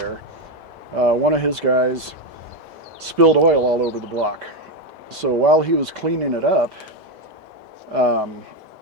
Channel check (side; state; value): left; late; 2.0 ms